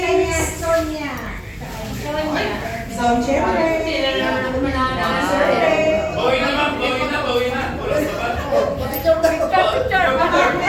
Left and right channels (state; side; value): identical; both; correlation 1.00